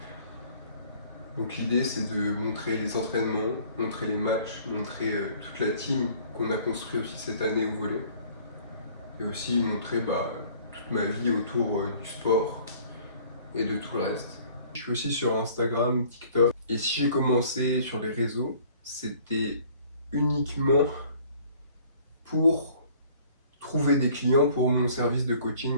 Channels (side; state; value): both; inverted; correlation -0.55